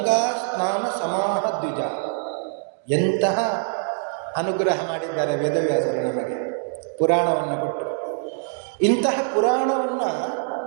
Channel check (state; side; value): silent; left; 56 dB below the other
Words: ಸ್ನಾನ ಸಮಾಹ ದ್ವಿಜ. ಎಂತಹ ಅನುಗ್ರಹ ಮಾಡಿದ್ದಾರೆ ವೇದವ್ಯಾಸರು ನಮಗೆ ಪುರಾಣವನ್ನು ಕೊಟ್ಟು. ಇಂತಹ ಪುರಾಣವನ್ನು